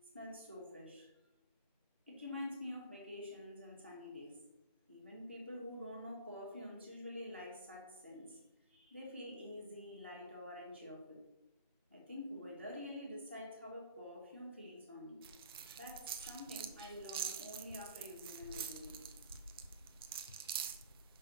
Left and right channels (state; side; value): inverted; both; correlation -0.44